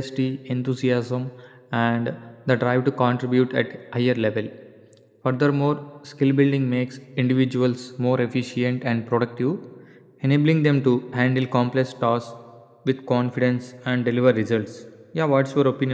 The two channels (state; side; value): identical; both; correlation 1.00